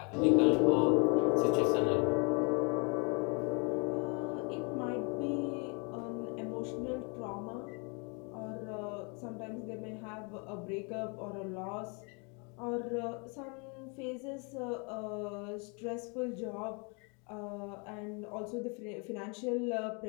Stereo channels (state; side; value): quieter; right; 34.2 dB